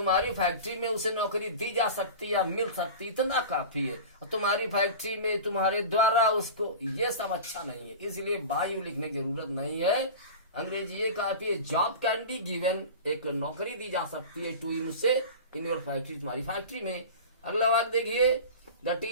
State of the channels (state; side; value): inverted; both; correlation -0.33